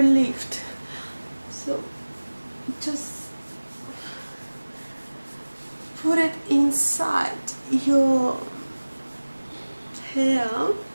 lift. So just put it inside your hair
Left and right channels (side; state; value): both; inverted; correlation -1.00